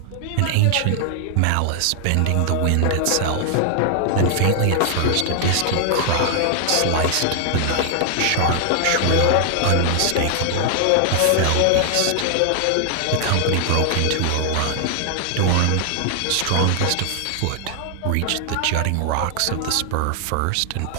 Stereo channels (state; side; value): different; both; correlation 0.00